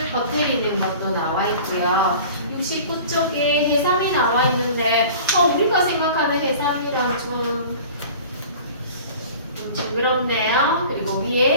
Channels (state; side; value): inverted; both; correlation -0.42